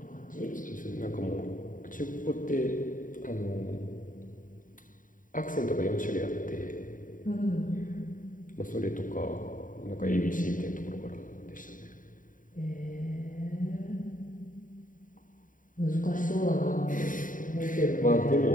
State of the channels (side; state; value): right; late; 0.39 ms